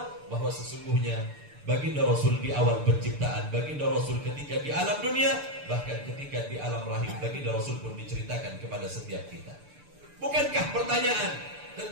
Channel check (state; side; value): late; left; 6.8 ms